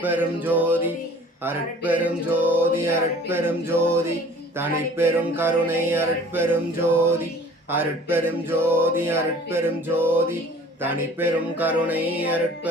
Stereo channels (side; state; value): both; normal; correlation 0.48